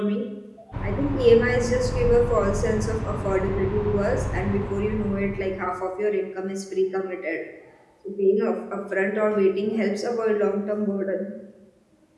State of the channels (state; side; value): identical; both; correlation 1.00